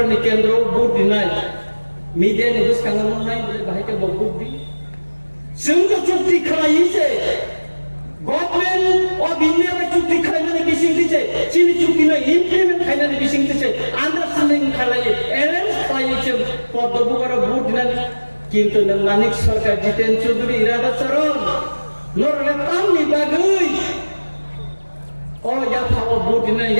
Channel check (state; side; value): inverted; both; correlation -1.00